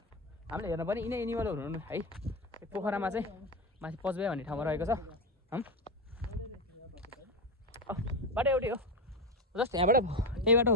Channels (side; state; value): both; normal; correlation 0.14